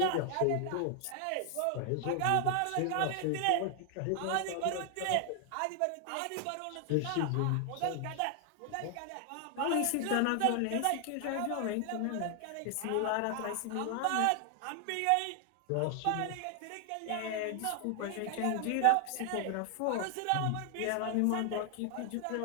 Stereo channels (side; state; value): both; different; correlation 0.00